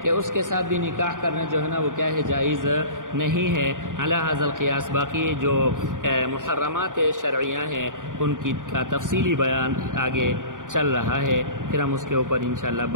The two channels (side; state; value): left; late; 0.88 ms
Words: کہ اس کے ساتھ بھی نکاح کرنا جو ہے نا وہ کیا ہے؟ جائز نہیں ہے علی ھذا القیاس. باقی جو محرمات شرعیہ ہیں ان کی کا تفصیلی بیان آگے چل رہا ہے، پھر ہم اس کے اوپر انشاءاللہ